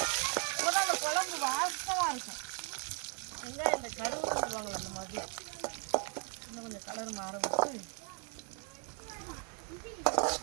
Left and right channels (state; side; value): quieter; left; 34.0 dB